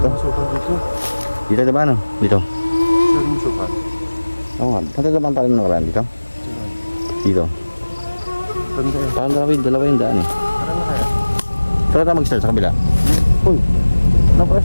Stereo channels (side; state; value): both; inverted; correlation -1.00